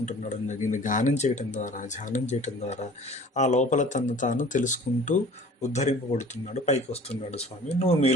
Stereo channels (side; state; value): both; normal; correlation 0.47